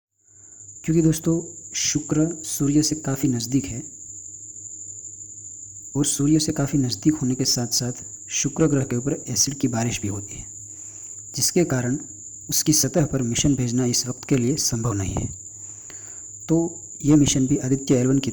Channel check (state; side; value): identical; both; correlation 1.00